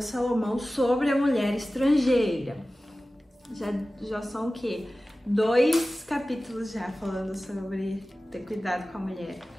Salomão sobre a mulher estrangeira. Já são o quê? 2 capítulos já falando sobre ter cuidado com a mulher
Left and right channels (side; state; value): both; normal; correlation 0.96